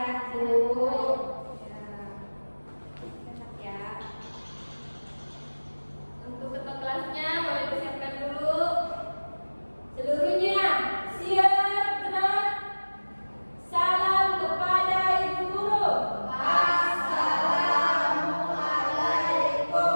Bu. Sehat ya. Untuk ketua kelasnya boleh disiapkan dulu. Seluruhnya siap gerak. Salam kepada Ibu Guru.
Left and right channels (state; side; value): inverted; both; correlation -1.00